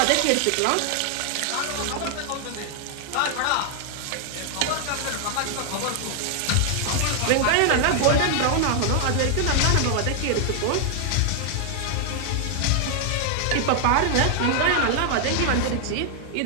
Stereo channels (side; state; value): both; different; correlation 0.00